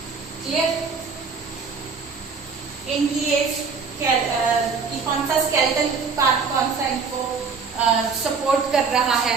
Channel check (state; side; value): quieter; left; 5.2 dB